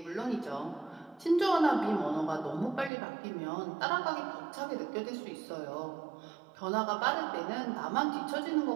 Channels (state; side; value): drops out; left; at 2.9 s